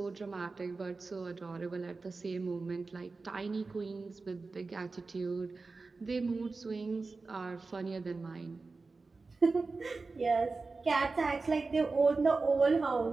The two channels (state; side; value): quieter; left; 3.9 dB